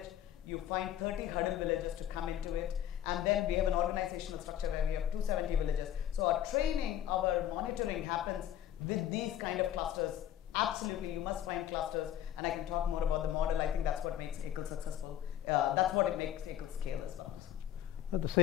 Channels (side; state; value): right; quieter; 11.0 dB